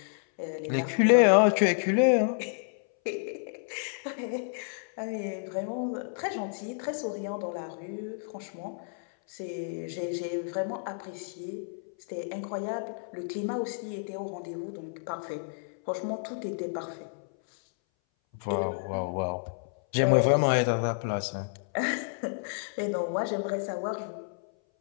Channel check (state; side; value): silent; right; 58 dB below the other